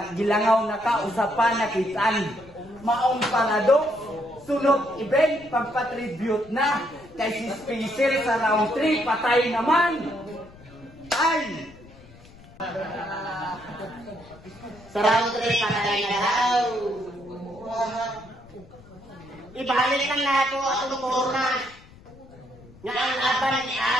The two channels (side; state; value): left; noise; rumble, 22 dB below the sound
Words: gilangaw na ka, usapa na kitaan. Maong paradox, sunod event, pagpatribute na. Kay si Spacer sa round 3, patay naman. Ay! Sa round 3, patay na daw. Ibalik lang nato atong korna. Nga ang laban ni